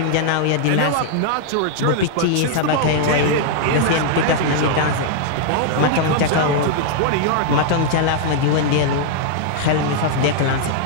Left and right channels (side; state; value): both; different; correlation 0.00